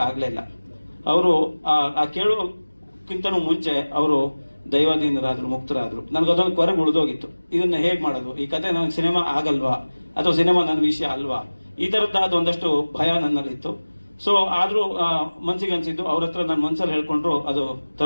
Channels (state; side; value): inverted; both; correlation -1.00